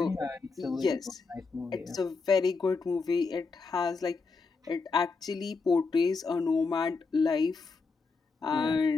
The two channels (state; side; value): quieter; right; 4.4 dB